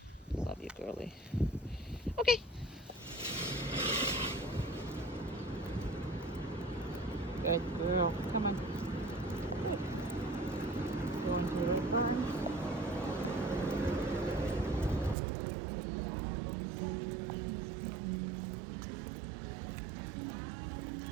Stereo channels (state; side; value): drops out; left; at 15.2 s